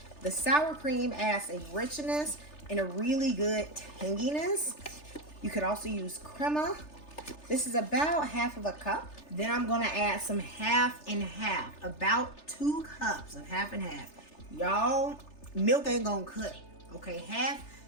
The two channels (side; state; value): right; late; 3.3 ms